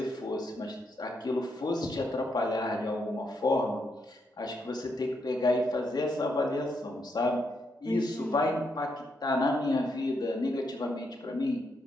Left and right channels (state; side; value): normal; both; correlation 0.79